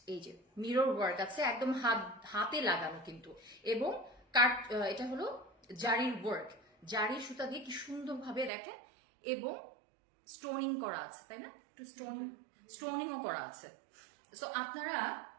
এই যে মিরর ওয়ার্ক আছে একদম হাতে লাগানো কিন্তু, এবং কাট এটা হলো জারির ওয়ার্ক, জারির সুতা দিয়ে কি সুন্দরভাবে দেখেন, এবং স্টোনিং করা আছে, তাই না? একটু স্টোনিংও করা আছে। সো আপনারা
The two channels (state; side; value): drops out; left; at 8.5 s